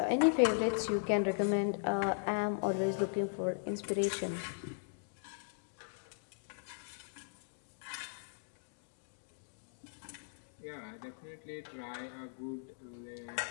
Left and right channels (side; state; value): right; silent; digital silence